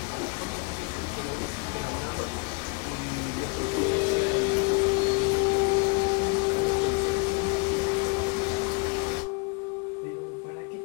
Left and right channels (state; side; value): quieter; right; 32.1 dB